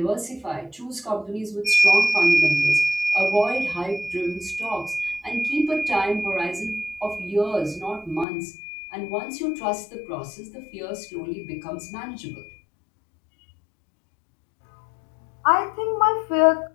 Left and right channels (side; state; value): right; drops out; at 8.2 s